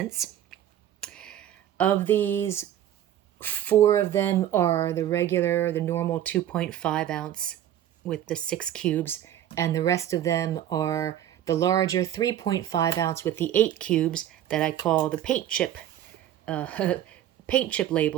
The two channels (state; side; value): quieter; left; 11.5 dB